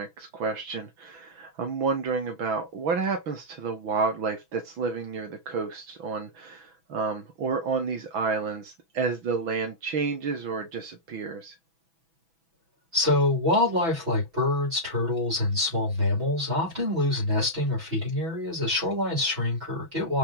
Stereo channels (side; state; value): left; late; 6.1 ms